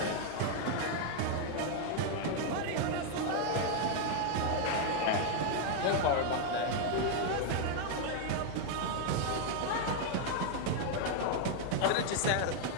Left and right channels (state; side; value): different; both; correlation 0.00